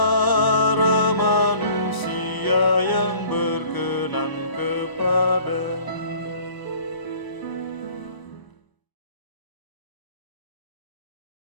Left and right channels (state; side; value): late; right; 1.0 ms